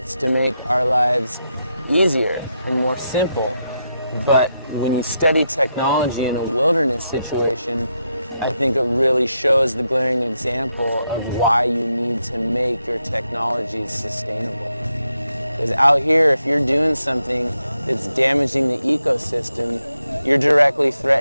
to make our lives easier and more simple. But when you study technology in a wilderness situation, I think it really shows the glaring example of why you need to make your technologies sustainable. Because out here, if you're doing something that's damaging the ecosystem, you're directly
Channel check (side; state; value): both; inverted; correlation -0.84